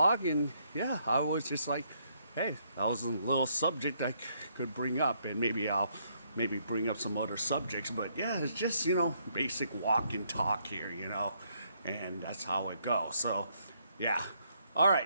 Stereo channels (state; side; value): inverted; both; correlation -0.72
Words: in. Yeah, I was just like, hey, that was a little subject I could bring up, and maybe I'll bring up some other subjects. But yeah, it's just, you know, basic walk and talk here, you know, and that's how it goes. So, yeah. All